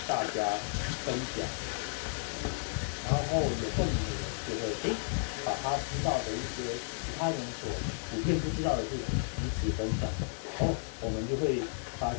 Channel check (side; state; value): right; silent; 56 dB below the other